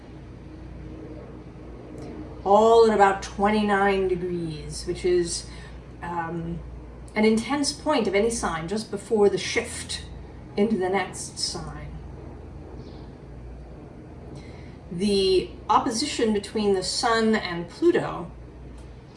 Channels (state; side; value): identical; both; correlation 1.00